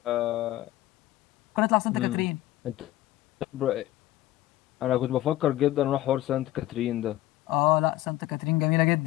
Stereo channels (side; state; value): right; quieter; 15.3 dB